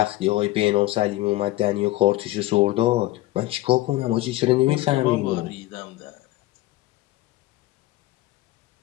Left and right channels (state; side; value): quieter; right; 17.4 dB